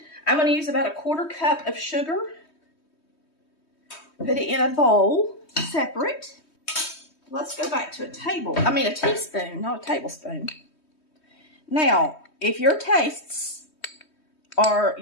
I'm going to use about a 1/4 cup of sugar. Put it in a bowl, separate. Let's go back to a teaspoon, not a tablespoon. Now, if your tastes are,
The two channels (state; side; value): late; right; 3.2 ms